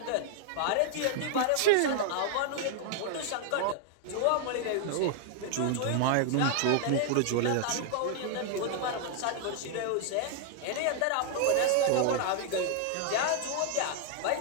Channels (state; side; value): different; both; correlation 0.00